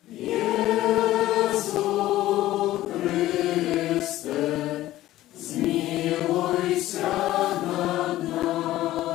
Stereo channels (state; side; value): quieter; right; 15.2 dB